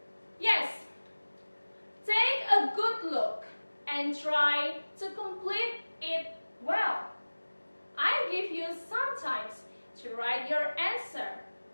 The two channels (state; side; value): inverted; both; correlation -1.00